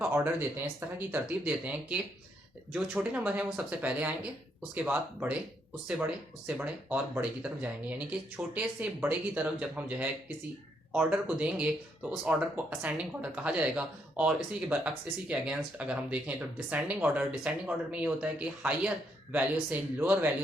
ऑर्डर देते हैं, इस तरह की तरतीब देते हैं कि जो छोटे नंबर हैं वो सबसे पहले आएंगे, उसके बाद बड़े, उससे बड़े, उससे बड़े और बड़े की तरफ जाएंगे। यानी कि छोटे से बड़े की तरफ जब हम जो है किसी ऑर्डर को देंगे तो उस ऑर्डर को असेंडिंग ऑर्डर कहा जाएगा। और इसी के बरअक्स, इसी के अगेंस्ट अगर हम देखें तो डिसेंडिंग ऑर्डर में ये होता है कि हायर वैल्यू से लोअर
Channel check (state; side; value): normal; both; correlation 0.75